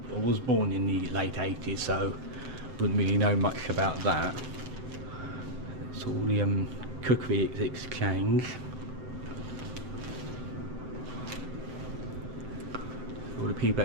was born in the late 80s, so wouldn't really know much about that. It's all the cookery exchange. All the people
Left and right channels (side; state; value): left; late; 8.0 ms